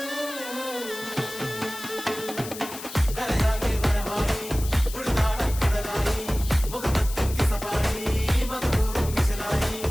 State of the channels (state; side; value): noise; left; hiss, 12 dB below the sound